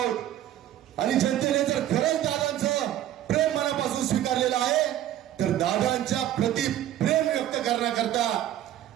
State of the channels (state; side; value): quieter; left; 12.3 dB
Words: आणि जनतेने जर खरंच दादांचं प्रेम मनापासून स्वीकारलेलं आहे, तर दादांच्या प्रति प्रेम व्यक्त करण्याकरता,